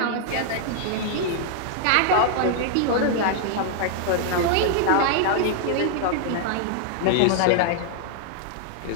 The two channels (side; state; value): both; different; correlation 0.00